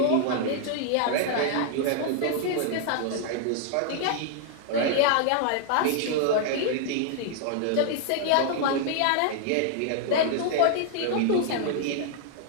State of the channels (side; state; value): both; different; correlation 0.00